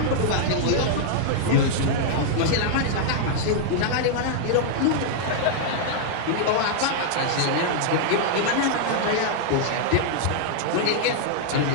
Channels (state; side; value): different; both; correlation -0.01